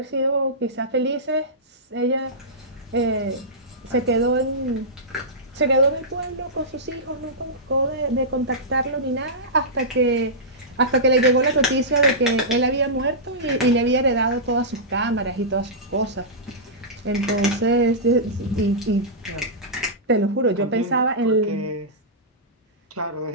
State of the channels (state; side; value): normal; both; correlation -0.15